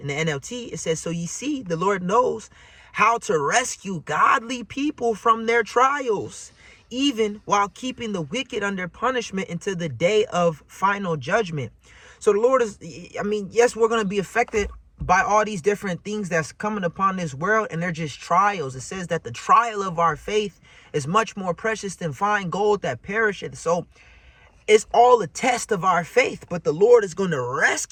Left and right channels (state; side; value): identical; both; correlation 1.00